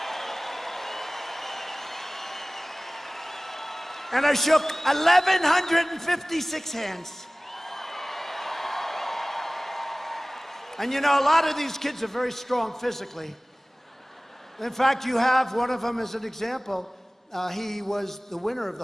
And I shook 1,156 hands. And a lot of these kids are very strong physically. In fact, you have one of them as an example. He was the winner of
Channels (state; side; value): normal; both; correlation 0.98